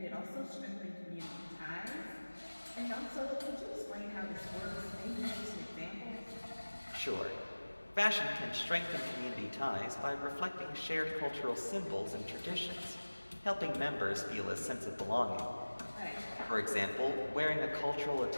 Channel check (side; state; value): both; inverted; correlation -1.00